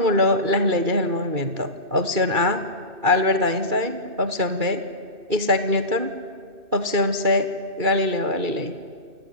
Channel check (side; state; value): left; late; 2.3 ms